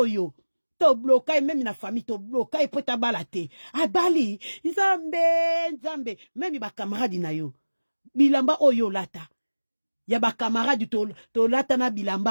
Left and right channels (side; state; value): both; inverted; correlation -1.00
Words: yo, to blokai memi na famille, to blokai pota balate, abali, nzambe, memi ba camarade na yo, bilamba oyo lata ya ba camarade to lata na